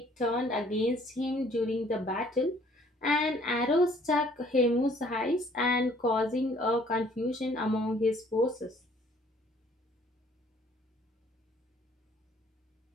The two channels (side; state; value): both; normal; correlation 0.59